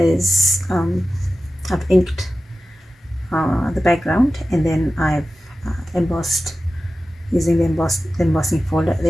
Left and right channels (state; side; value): normal; both; correlation 0.94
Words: I've inked the background, and then I've embossed using the embossing folder.